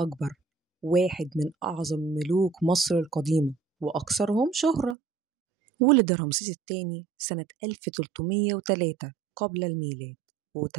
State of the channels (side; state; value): left; drops out; at 5.0 s